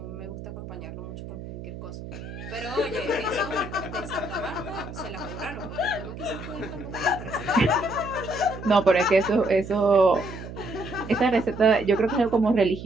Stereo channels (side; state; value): right; noise; hum, 11 dB below the sound